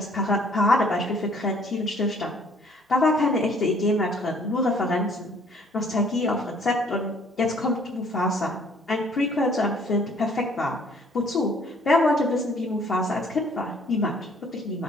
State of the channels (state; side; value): normal; both; correlation 0.59